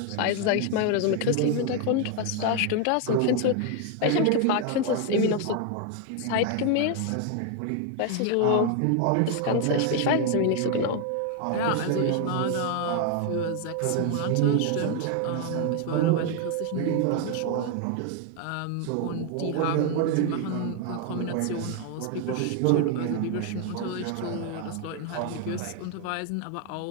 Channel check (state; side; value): different; both; correlation 0.01